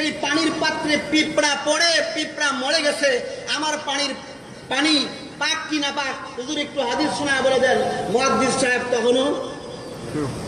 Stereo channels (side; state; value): both; identical; correlation 1.00